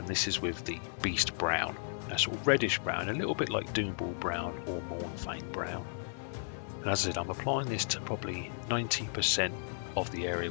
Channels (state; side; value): silent; right; 55 dB below the other